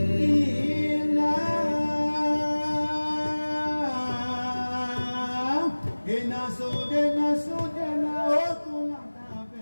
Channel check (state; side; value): inverted; both; correlation -1.00